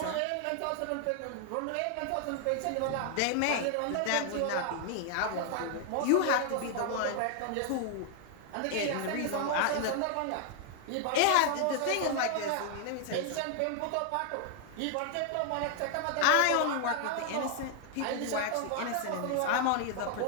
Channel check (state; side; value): different; both; correlation 0.00